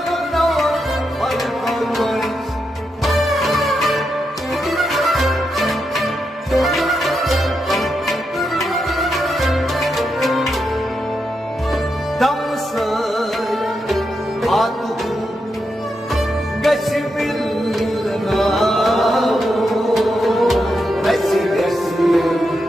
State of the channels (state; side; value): normal; both; correlation 0.85